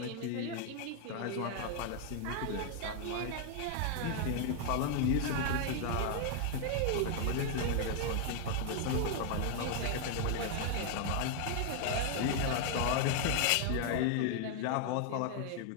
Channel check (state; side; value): different; both; correlation 0.00